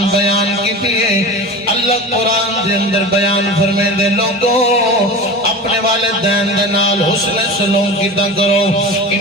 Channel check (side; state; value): both; normal; correlation 0.31